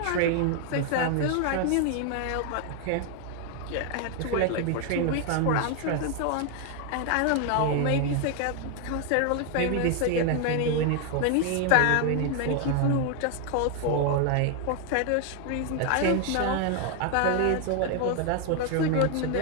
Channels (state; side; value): different; both; correlation 0.00